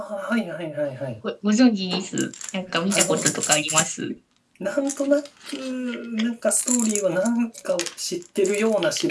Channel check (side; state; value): both; identical; correlation 1.00